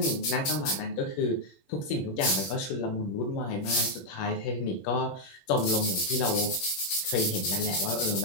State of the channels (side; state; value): right; late; 21 ms